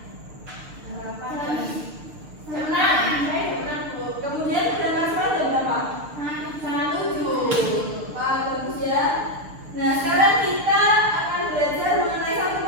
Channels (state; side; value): late; left; 6.7 ms